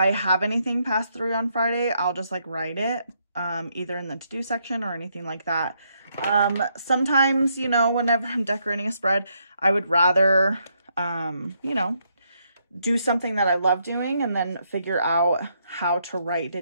have anything past 3 on Friday, I'll just like write it either in the to-do section or anything like that. Sometimes, you know, whenever I'm decorating a spread, I would rather, you know, do something that I love doing and then figure out how to write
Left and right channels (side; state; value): both; inverted; correlation -0.76